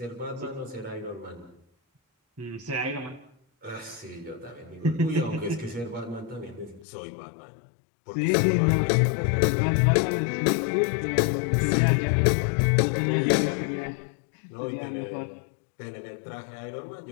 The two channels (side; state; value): right; drops out; at 6.9 s